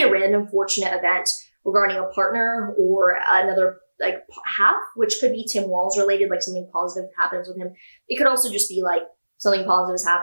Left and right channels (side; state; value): both; inverted; correlation -1.00